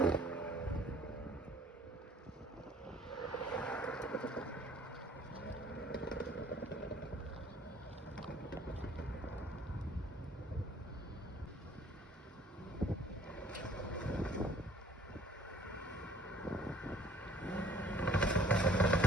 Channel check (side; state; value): both; normal; correlation 0.56